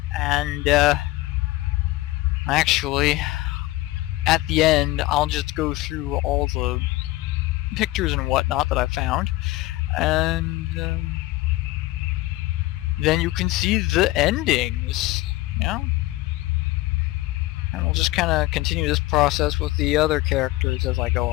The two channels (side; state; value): right; quieter; 18.3 dB